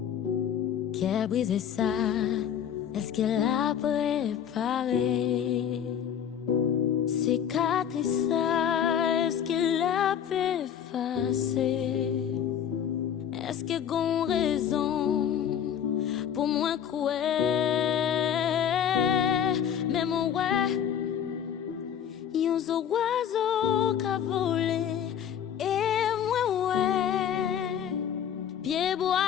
Qui a brisé ça? Est-ce qu'elle a préparé? Cicatrice ça, est-ce qu'elle a effacé? Est-ce qu'elle a raison pour moi croire? Mais mon ouais, yon zo oiseau qu'a volé et moi ouais, pied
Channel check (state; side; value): quieter; right; 9.0 dB